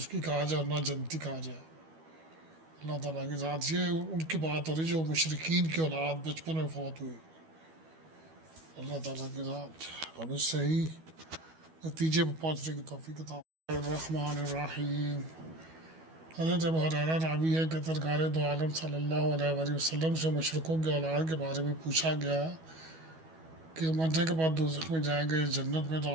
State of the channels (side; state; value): left; late; 12 ms